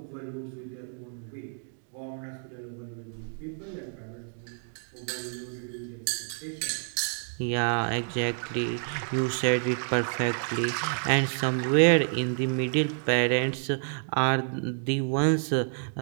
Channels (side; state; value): left; silent; 56 dB below the other